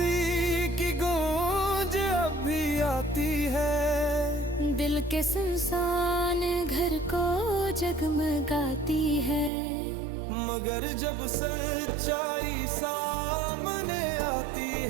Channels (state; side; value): drops out; left; at 9.5 s